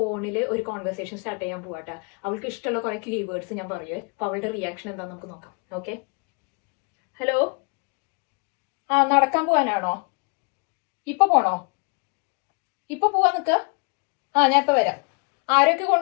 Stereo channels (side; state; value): right; quieter; 35.9 dB